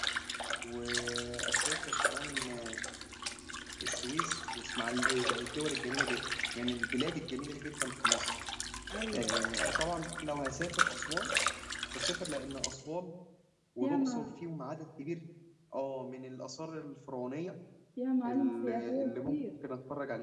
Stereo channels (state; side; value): identical; both; correlation 1.00